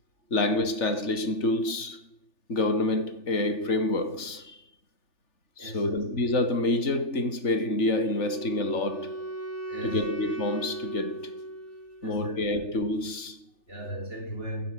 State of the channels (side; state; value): right; late; 3.4 ms